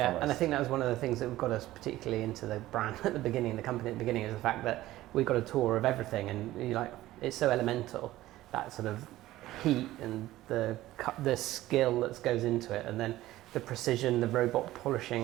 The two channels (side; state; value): left; quieter; 15.8 dB